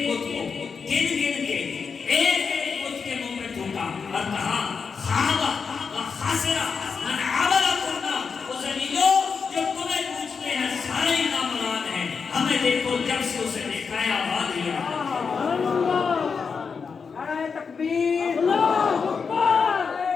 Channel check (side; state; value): right; quieter; 5.6 dB